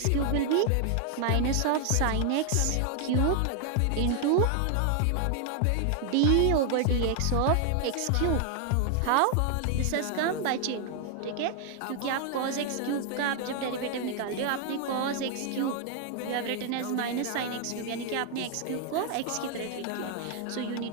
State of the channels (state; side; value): different; both; correlation 0.00